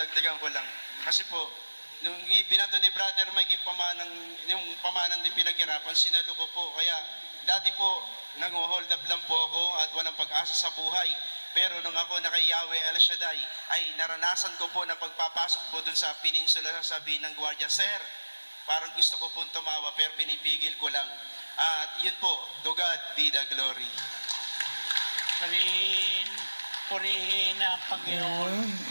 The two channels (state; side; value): inverted; both; correlation -1.00